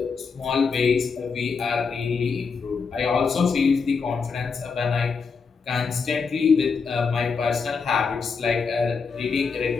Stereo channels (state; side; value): quieter; right; 5.2 dB